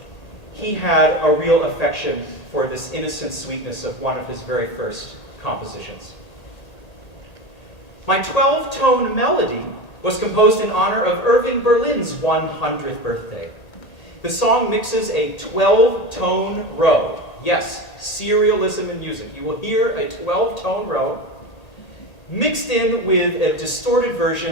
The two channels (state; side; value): late; right; 1.8 ms